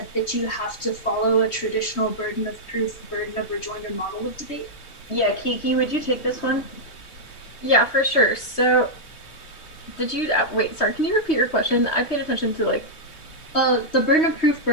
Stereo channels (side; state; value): right; late; 3.1 ms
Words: that you have to follow a traditional burden of proof, burden of rejoinder model of debate? Yeah, Kiki, would you take this one? Yeah, for sure. So, did you wait? Sorry, can you repeat your question? I paid attention to like. The burden of proof,